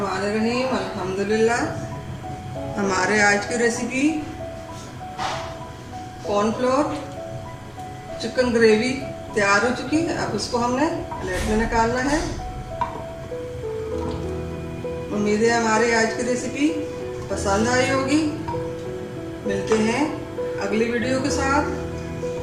अल्हम्दुलिल्लाह। हमारे आज की रेसिपी कॉर्नफ्लोर चिकन ग्रेवी तैयार हो चुकी है। अब उसको हमने प्लेट में निकालना है। उम्मीद है हमारी आज की रेसिपी पसंद आई होगी। मिलते हैं अगली वीडियो के साथ।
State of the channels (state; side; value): identical; both; correlation 1.00